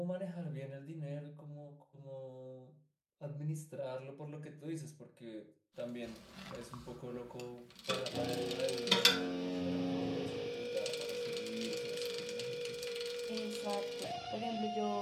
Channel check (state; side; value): identical; both; correlation 1.00